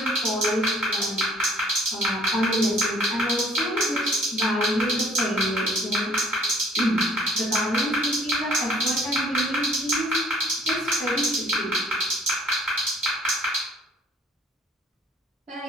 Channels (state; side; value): normal; both; correlation 0.58